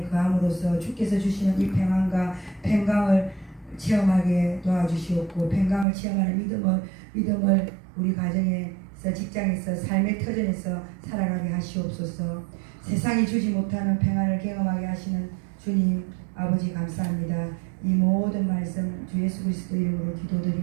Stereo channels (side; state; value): left; drops out; at 5.9 s